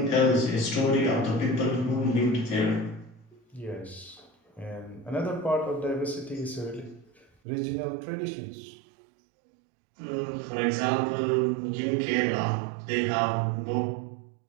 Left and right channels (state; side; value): drops out; left; at 7.2 s